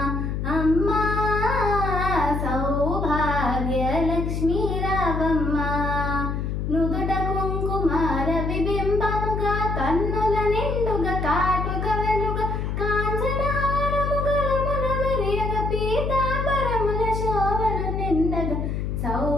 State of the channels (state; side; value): noise; left; hum, 2 dB below the sound